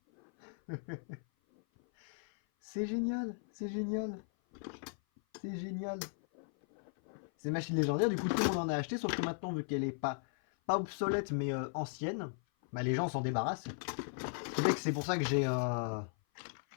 C'est génial, c'est génial, c'est génial. C'est une machine légendaire, du coup tout le monde en a acheté, sauf que maintenant, vu qu'elle est pas obsolète mais ancienne, bah, les gens s'en débarrassent. C'est pour ça que j'ai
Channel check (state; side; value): silent; right; 53 dB below the other